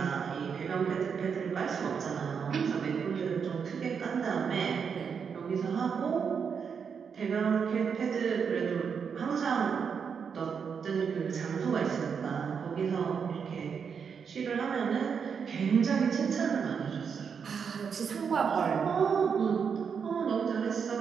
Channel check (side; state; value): left; quieter; 6.5 dB